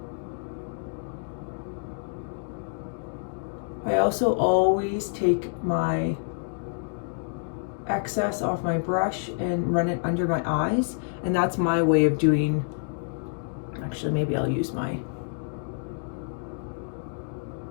I also always take my excess off my brush and run it under my eyes, and that's my way of doing, actually maybe I'll use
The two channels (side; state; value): right; silent; digital silence